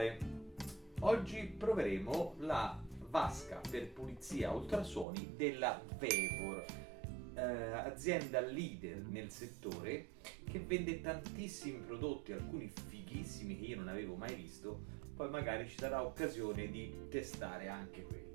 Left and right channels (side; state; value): left; drops out; at 5.1 s